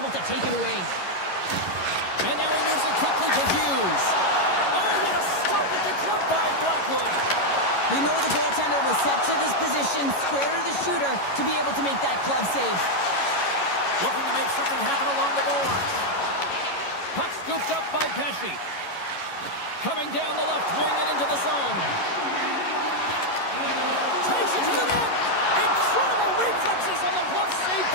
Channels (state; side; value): late; right; 11 ms